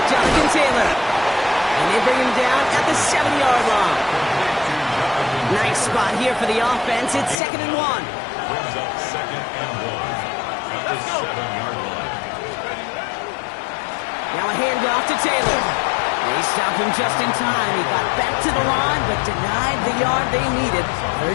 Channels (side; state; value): right; drops out; at 7.4 s